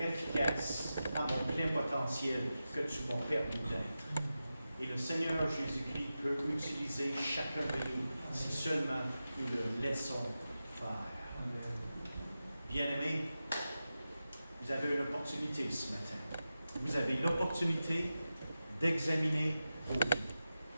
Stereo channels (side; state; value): both; inverted; correlation -0.92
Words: efficace à mon plein potentiel que tu m'as permis d'être. Et le Seigneur Jésus-Christ peut utiliser chacun de nous si seulement nous le laissons faire. Bien-aimés, vous avez une opportunité ce matin. Vous avez l'opportunité d'examiner vos vies.